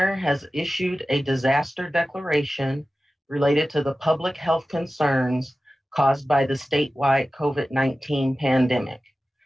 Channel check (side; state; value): both; normal; correlation 0.95